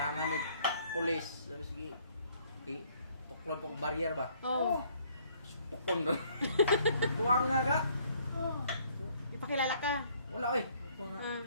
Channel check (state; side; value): inverted; both; correlation -0.63